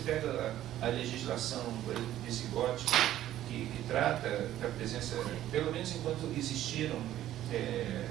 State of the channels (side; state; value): left; quieter; 12.9 dB